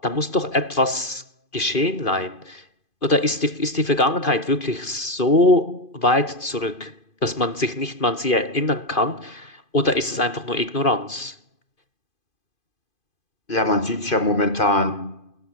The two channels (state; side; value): late; right; 2.5 ms